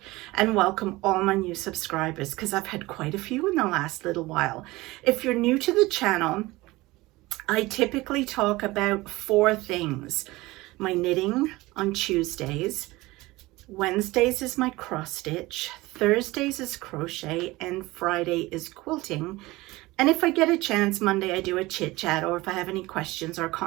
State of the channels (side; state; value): left; quieter; 20.3 dB